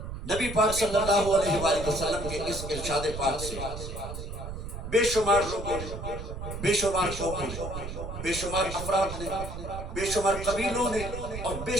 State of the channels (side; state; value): right; noise; rumble, 7 dB below the sound